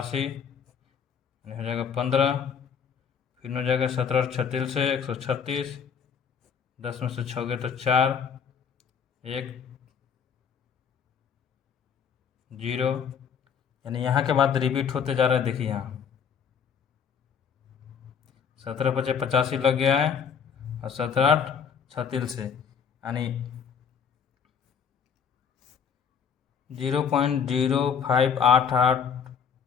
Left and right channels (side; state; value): right; quieter; 7.1 dB